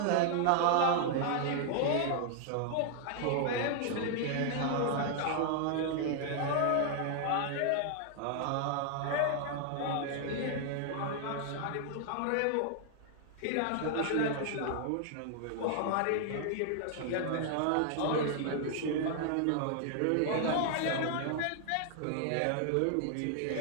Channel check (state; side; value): different; both; correlation 0.00